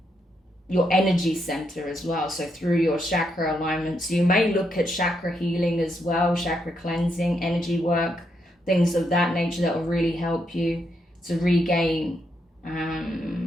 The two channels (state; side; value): normal; both; correlation 0.79